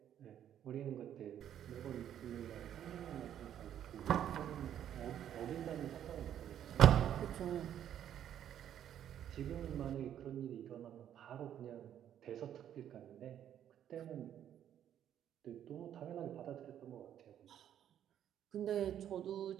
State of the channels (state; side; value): quieter; left; 10.3 dB